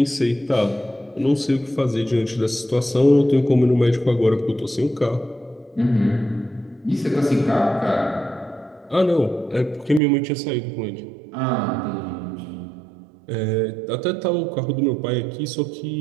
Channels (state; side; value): drops out; left; at 10.0 s